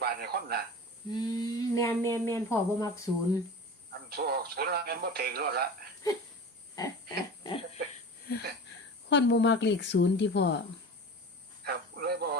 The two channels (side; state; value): both; normal; correlation 0.34